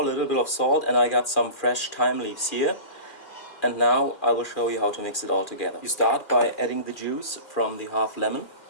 A little bit of salt, and I got some fresh thyme leaves here. And now I will show you how to mix it all together. You start by adding the juice from the half lemon.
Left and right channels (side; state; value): right; late; 2.4 ms